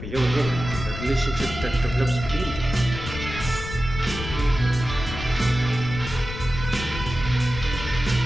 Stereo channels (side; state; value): left; noise; rumble, 8 dB below the sound